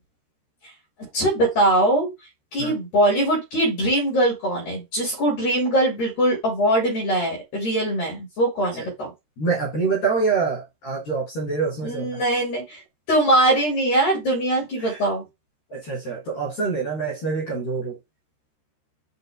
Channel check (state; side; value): late; right; 13 ms